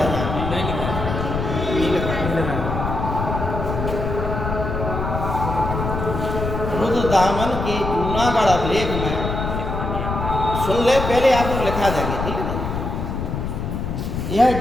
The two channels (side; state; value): left; noise; rumble, 3 dB below the sound